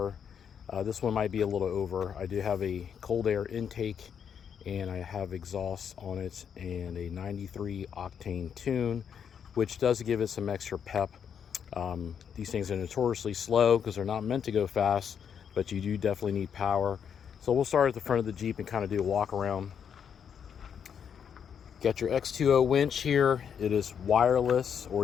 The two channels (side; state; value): right; quieter; 7.7 dB